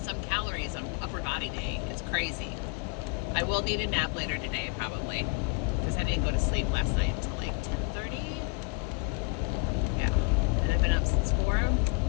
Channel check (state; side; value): quieter; right; 30.8 dB